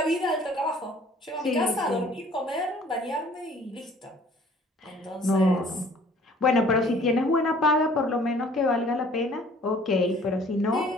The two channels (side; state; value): both; normal; correlation 0.53